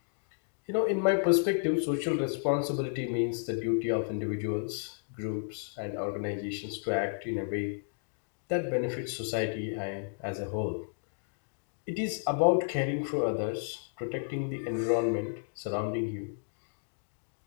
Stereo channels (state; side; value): silent; right; digital silence